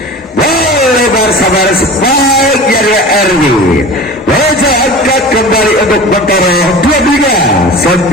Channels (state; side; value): normal; both; correlation 0.36